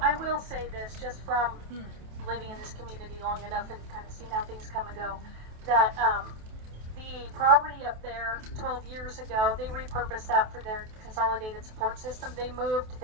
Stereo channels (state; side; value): late; left; 28 ms